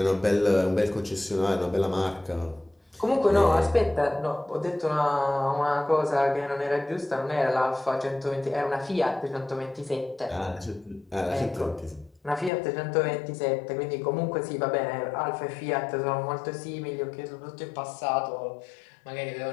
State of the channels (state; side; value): drops out; right; at 12.5 s